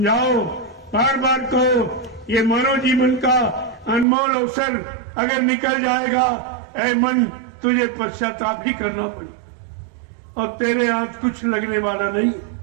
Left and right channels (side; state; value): left; drops out; at 4.0 s